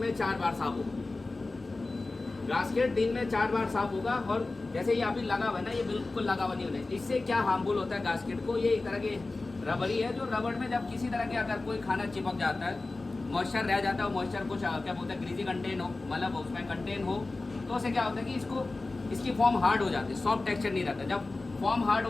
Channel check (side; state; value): right; quieter; 3.3 dB